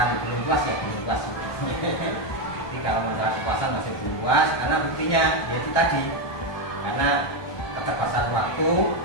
belum puas ya belum puas. Jadi kalau masalah kepuasan masih belum puas, karena buktinya yaitu tadi, karena keterbatasan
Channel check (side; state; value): right; late; 1.2 ms